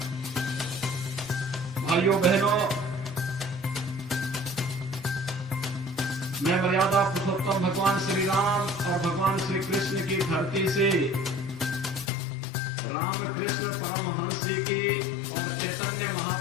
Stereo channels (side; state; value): right; drops out; at 12.1 s